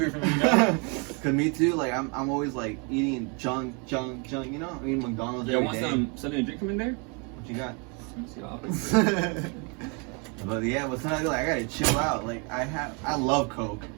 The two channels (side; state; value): left; quieter; 33.9 dB